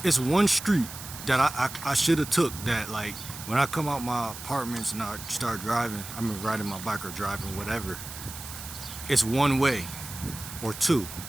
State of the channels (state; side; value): noise; right; hiss, 11 dB below the sound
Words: one street that I should have took, that like when I come out my apartments and I start driving, I mean riding my bike or driving, whatever, it's one way or two.